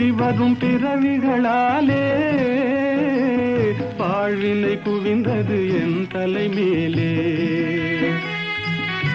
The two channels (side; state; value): both; identical; correlation 1.00